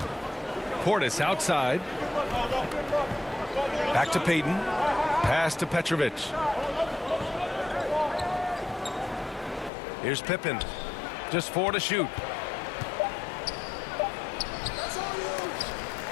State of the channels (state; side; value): drops out; right; at 9.7 s